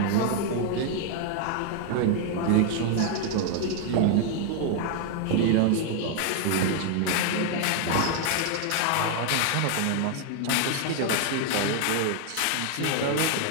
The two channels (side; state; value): both; different; correlation 0.00